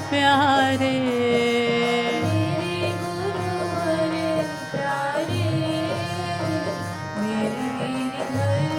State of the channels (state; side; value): identical; both; correlation 1.00